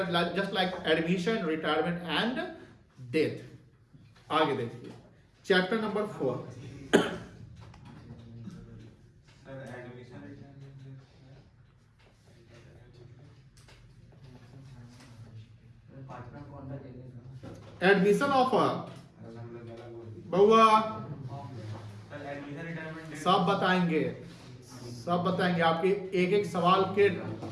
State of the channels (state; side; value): identical; both; correlation 1.00